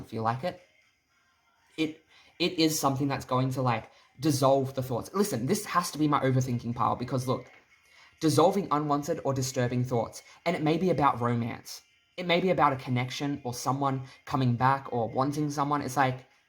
feel like it. It is something that's going to like dissolve the thoughts. Listen, this has to be my overthinking pile because look, dissolving unwanted or disturbing thoughts. And it may be about romance. It may be about a connection or someone coming back or wanting someone. It's like,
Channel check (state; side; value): identical; both; correlation 1.00